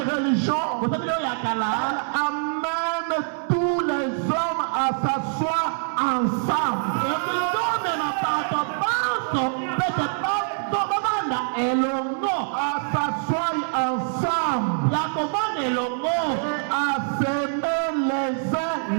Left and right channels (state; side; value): silent; left; digital silence